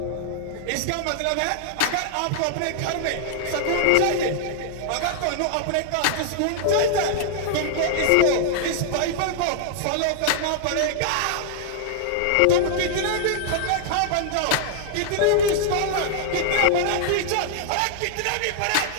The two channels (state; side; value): different; both; correlation -0.01